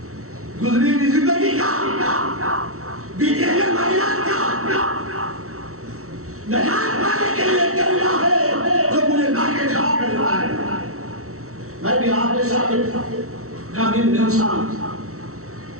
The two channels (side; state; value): left; late; 0.64 ms